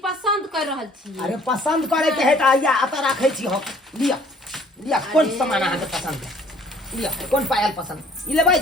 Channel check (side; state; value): both; normal; correlation 0.57